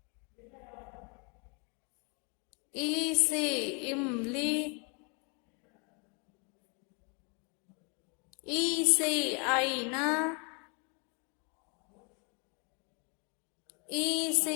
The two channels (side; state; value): right; quieter; 34.9 dB